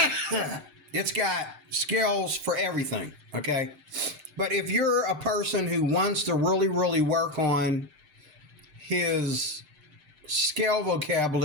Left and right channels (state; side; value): late; left; 6.6 ms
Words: It's got scales for everything, okay? But if you're a person who wants to really, really work on his scale